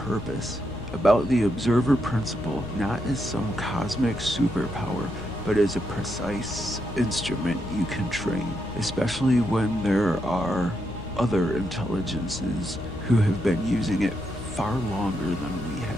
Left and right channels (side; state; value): left; noise; hum, 11 dB below the sound